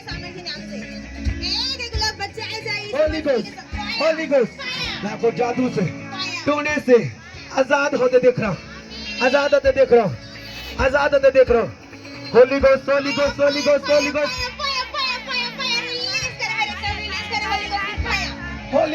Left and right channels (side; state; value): both; identical; correlation 1.00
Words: होली गोस्ट, होली गोस्ट. मैं आपको जादू से, टोने से आजाद होते देख रहा हूँ, आजाद होते देख रहा हूँ, आजाद होते देख रहा हूँ. Holi ghost, holy ghost, holy ghost, holy ghost,